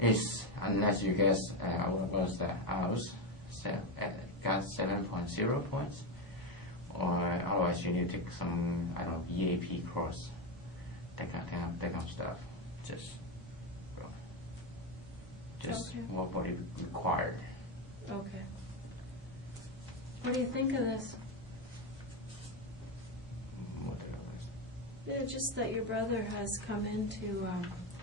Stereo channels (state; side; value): normal; both; correlation 0.11